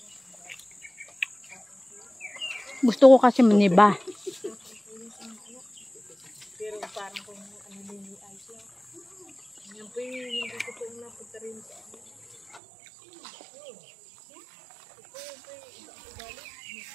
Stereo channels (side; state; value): left; drops out; at 12.6 s